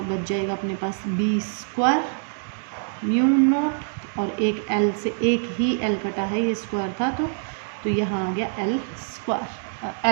बच जाएगा अपने पास B² μ0, और एक L से एक ही L कटा है, ये स्क्वायर था, तो यहाँ आ गया L²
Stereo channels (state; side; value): silent; left; digital silence